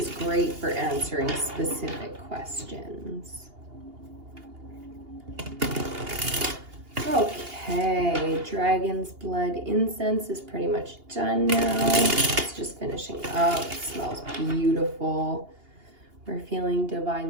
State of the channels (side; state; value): left; late; 2.8 ms